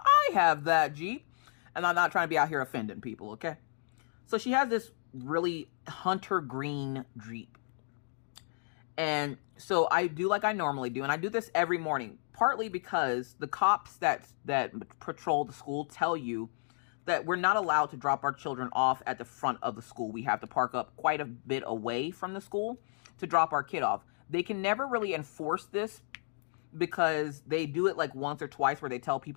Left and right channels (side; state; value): right; silent; digital silence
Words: have that Jeep. And I'm not trying to be out here offending people, okay? So she has this really hunter green Jeep. And so I do like I normally do. And I do this every morning, partly because the cops that patrol the school tell you that we're not allowed to drop our children off at the front of the school. We have to park up quite a bit away from the school to drop our kid off. They can never really enforce this because they do it like once or twice where they tell